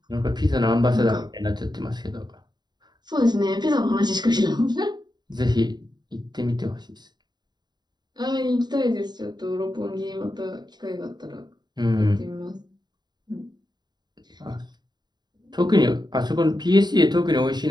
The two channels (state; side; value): late; left; 0.20 ms